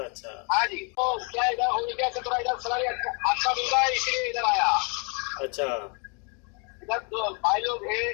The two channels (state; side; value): quieter; right; 35.7 dB